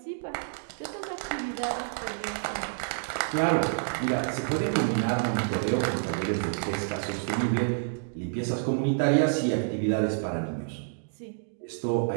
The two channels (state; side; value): silent; left; digital silence